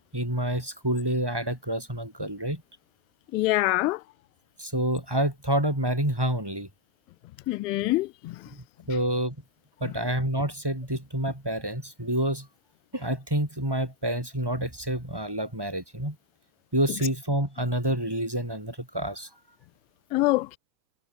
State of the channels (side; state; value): left; late; 1.1 ms